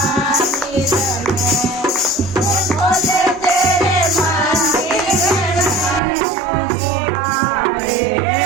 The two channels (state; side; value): drops out; left; at 6.0 s